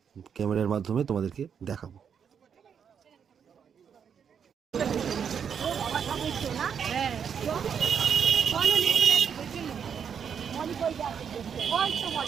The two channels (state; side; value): quieter; left; 7.4 dB